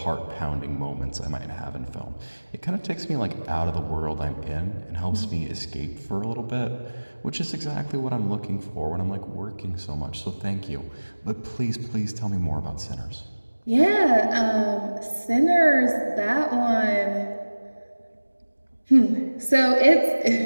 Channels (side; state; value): both; inverted; correlation -1.00